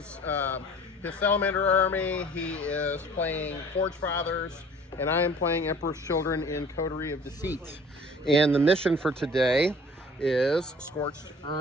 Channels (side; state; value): both; normal; correlation 0.49